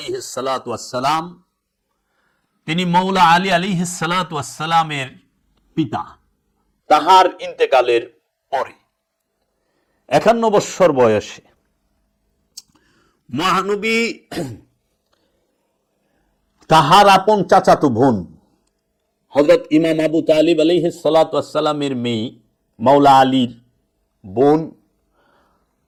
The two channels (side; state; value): both; identical; correlation 1.00